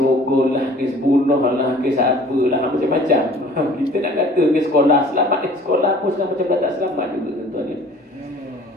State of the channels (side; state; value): both; normal; correlation 0.50